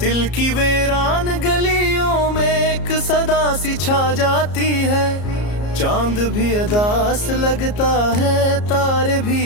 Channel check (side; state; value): right; late; 34 ms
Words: की वीरान गलियों में एक सदा सी छा जाती है। चांद भी अदास लगता है, तारे भी